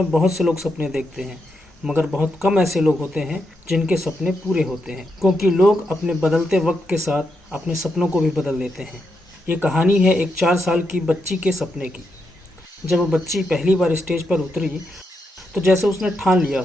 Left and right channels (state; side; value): normal; both; correlation 0.83